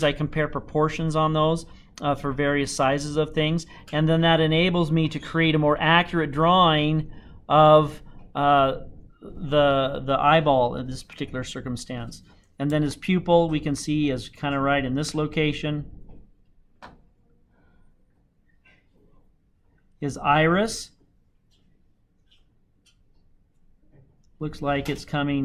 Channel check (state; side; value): identical; both; correlation 1.00